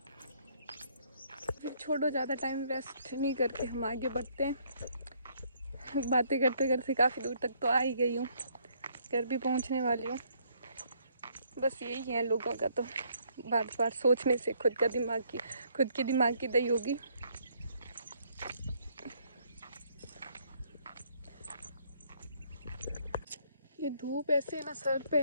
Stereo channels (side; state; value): both; inverted; correlation -0.67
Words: फिर छोड़ो, ज़्यादा टाइम वेस्ट नहीं करके हम आगे बढ़ते हैं। बातें करते करते काफ़ी दूर तक तो आ ही गई हूँ, घर भी पहुँचने वाली हूँ। बस यही है लोगों का, तो बार बार सोचने से खुद के दिमाग की दही होगी। ये धूप ऐसे ना सर पे